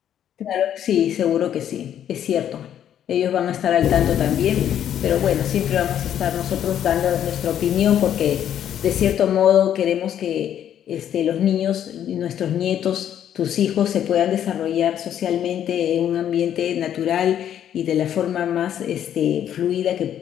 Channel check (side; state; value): right; quieter; 10.1 dB